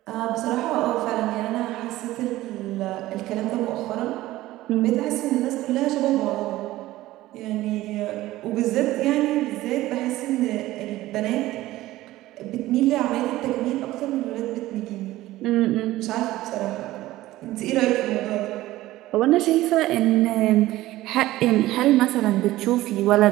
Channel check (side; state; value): left; quieter; 16.5 dB